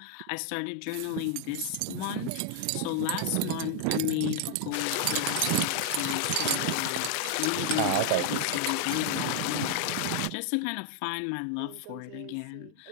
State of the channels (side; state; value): both; different; correlation 0.00